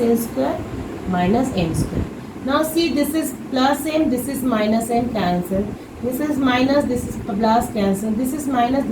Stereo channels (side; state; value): both; identical; correlation 1.00